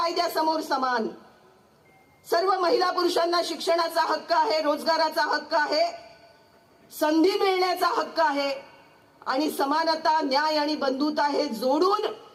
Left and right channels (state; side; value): identical; both; correlation 1.00